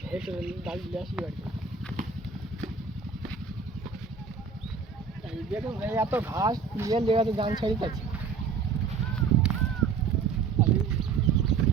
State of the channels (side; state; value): left; quieter; 5.4 dB